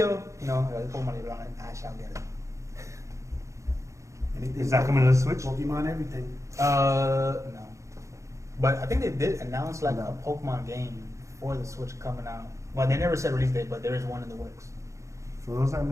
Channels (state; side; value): late; left; 0.15 ms